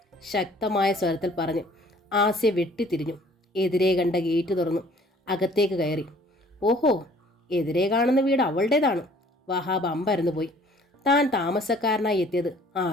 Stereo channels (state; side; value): normal; both; correlation 0.55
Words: ശക്തമായ സ്വരത്തിൽ പറഞ്ഞ് ആസിയ വെട്ടിത്തിരിഞ്ഞു. എതിരെ കണ്ട ഗേറ്റ് തുറന്നു അകത്തേക്ക് കയറി. ഓഹോ, എതിരെ കാണുന്ന വീട് അവളുടേതാണ്. വഹാബ് അമ്പരന്നു പോയി. താൻ താമസക്കാരനായി എത്തിയത്